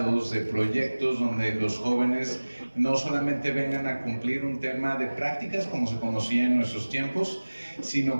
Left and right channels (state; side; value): inverted; both; correlation -1.00